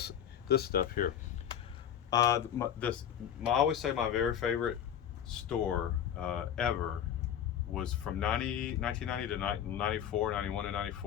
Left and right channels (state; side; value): quieter; right; 9.5 dB